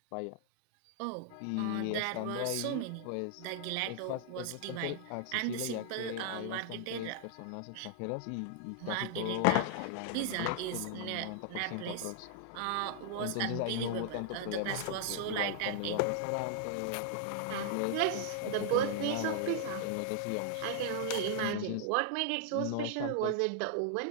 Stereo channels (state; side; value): different; both; correlation -0.01